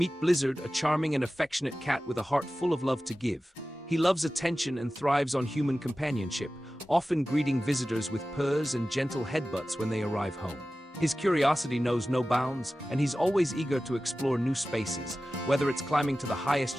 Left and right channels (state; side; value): normal; both; correlation 0.95